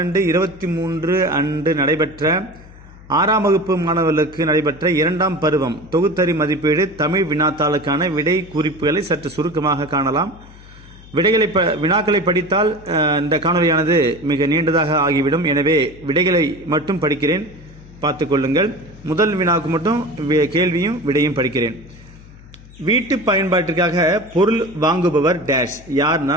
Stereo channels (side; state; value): left; noise; hum, 21 dB below the sound